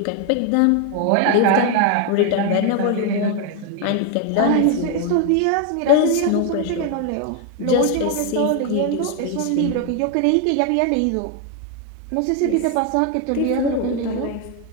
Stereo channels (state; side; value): different; both; correlation 0.01